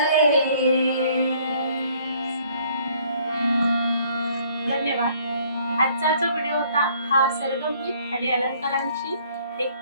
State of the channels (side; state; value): both; inverted; correlation -0.61